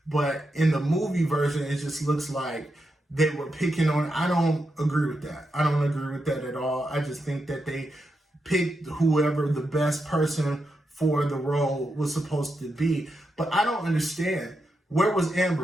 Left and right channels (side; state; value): both; normal; correlation 0.86